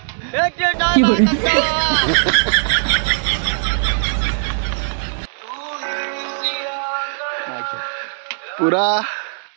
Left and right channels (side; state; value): left; silent; digital silence